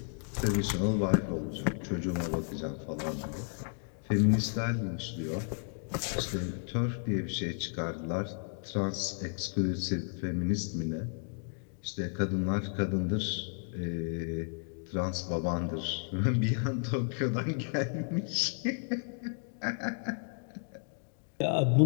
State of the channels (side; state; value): right; silent; 56 dB below the other